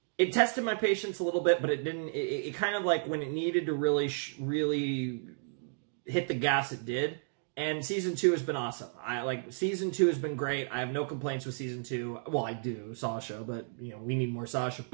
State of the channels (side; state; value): left; silent; digital silence